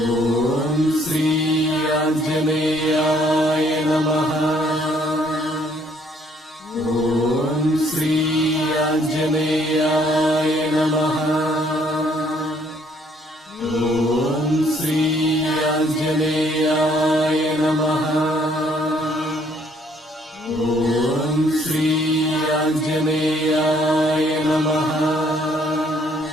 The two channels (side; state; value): both; normal; correlation 0.65